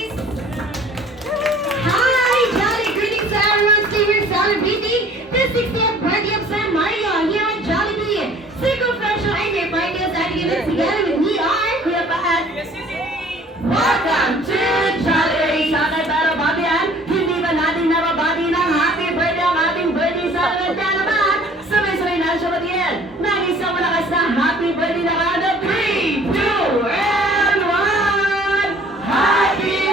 Hi, Jolly! Greetings to everyone still celebrating the 60th birthday of San Mario here at Jollibee. Single Fresh ay may party sa ating event together with me are Kuya Paat. Welcome to Jolly! Sana tayo babihan, hindi ba natin nababati ng happy birthday ang ating birthday celebrant naman? Sabay-sabay na siya batiin. Nag-isang malakas na happy birthday na kada 3, 2, and 1! Happy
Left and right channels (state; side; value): normal; both; correlation 0.53